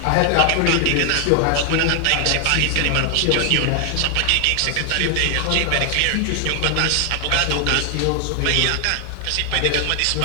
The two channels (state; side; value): different; both; correlation 0.00